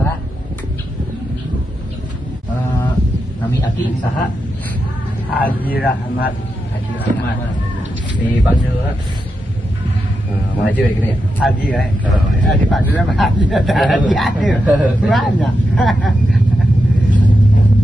Nami aki saha? Haji Rahmat. Haji Rahmat. Dipanggil maju ya gini ya? Haji ya. Dipanggil sama Haji. Haji. Banyak.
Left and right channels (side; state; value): both; normal; correlation 0.87